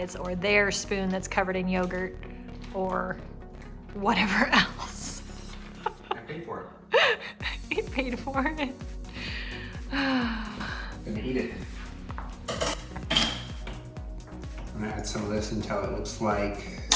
or their spoon that's covered in yogurt or whatever else. I paid for it. He paid for it. Gonna eat it. I'm gonna add some of this until it looks like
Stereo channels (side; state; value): both; identical; correlation 1.00